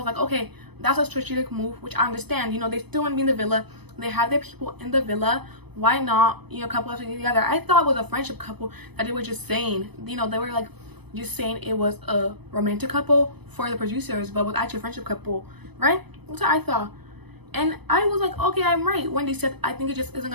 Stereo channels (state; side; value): late; left; 0.98 ms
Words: like, okay, that's a strategic move, which I understand. You know, they still want to be in the villa, they have their people in the villa, why not, you know, couple up together. I thought it was a friendship couple that they were just saying, you know, they were like just saying it was a romantic couple for the producers, but was actually a friendship couple, right? That's what I thought. And I was like, okay, I'm right. When they said I think it just isn't